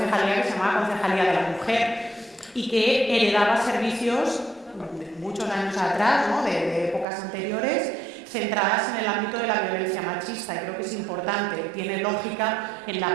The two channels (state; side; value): drops out; left; at 7.1 s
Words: que se llamaba Concejalía de la Mujer y que heredaba servicios de muchos años atrás, ¿no? de épocas anteriores, centradas en el ámbito de la violencia machista, y creo que es importante, tiene lógica en la